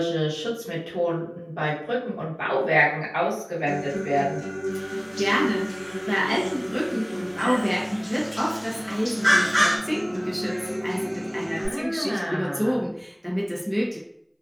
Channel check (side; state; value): both; identical; correlation 1.00